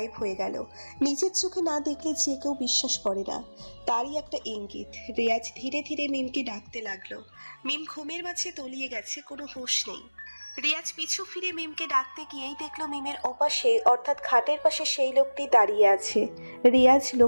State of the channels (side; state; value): both; inverted; correlation -1.00